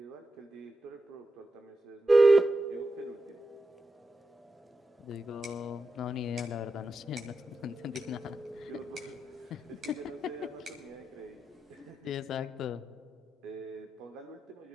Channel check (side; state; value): both; normal; correlation 0.89